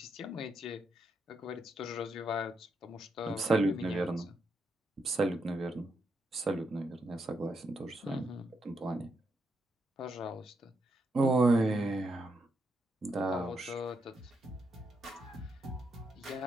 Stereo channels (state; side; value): normal; both; correlation 0.81